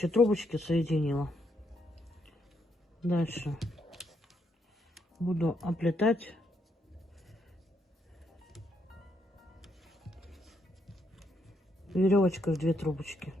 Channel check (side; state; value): both; normal; correlation 0.76